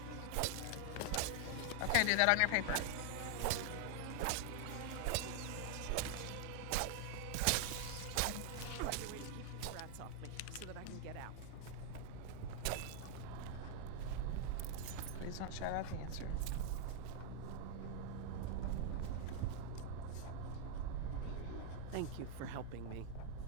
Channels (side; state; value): both; different; correlation 0.00